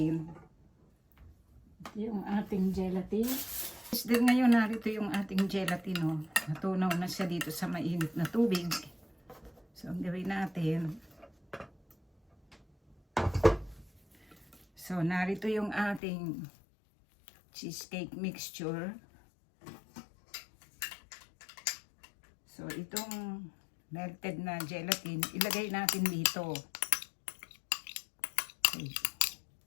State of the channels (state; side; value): drops out; right; at 16.0 s